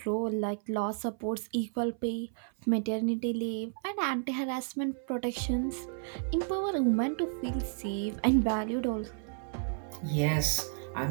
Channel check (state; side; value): silent; left; 56 dB below the other